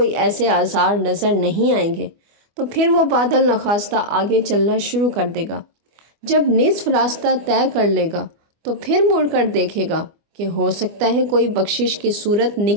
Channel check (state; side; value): late; left; 24 ms